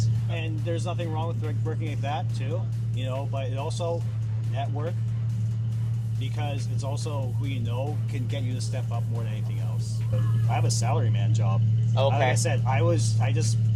And there's nothing wrong with working like that too, but it also network, because it's also who can get you to step up more than anything else. I have a salaryman job. Okay. Like I said, I just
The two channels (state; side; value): identical; both; correlation 1.00